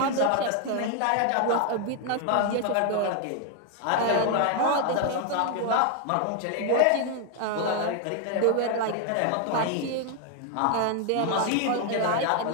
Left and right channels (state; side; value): different; both; correlation 0.00